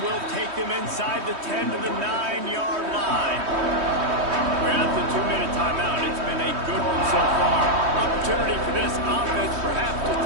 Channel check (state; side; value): late; left; 3.2 ms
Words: will take them inside the 10 to the 9-yard line. We're at the 2-minute timeout. It's been a good one so far. Opportunity for this offense perhaps to